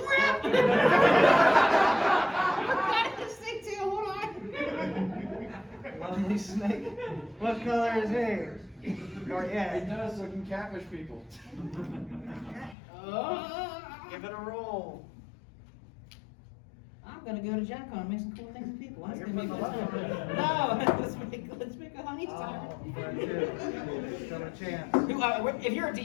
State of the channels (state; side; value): drops out; right; at 12.8 s